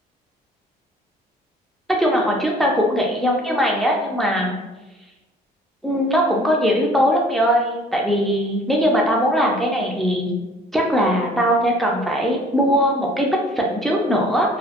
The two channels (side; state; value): both; normal; correlation 0.54